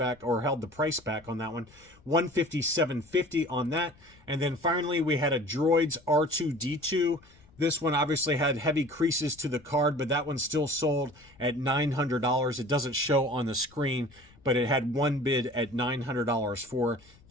or held the price back on that one. $157.50 on that. And then finally, we had a Droids R2-D2. This one obviously had heavy creases to the card, but that one still sold at $900. It doesn't show on the screen, but it had one bid at $900 for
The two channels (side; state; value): left; noise; rumble, 27 dB below the sound